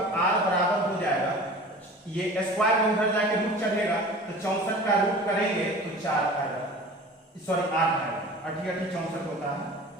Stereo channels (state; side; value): normal; both; correlation 0.40